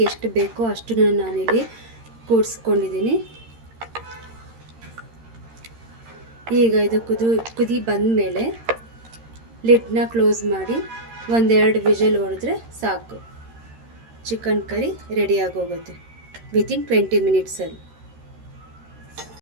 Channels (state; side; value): late; left; 13 ms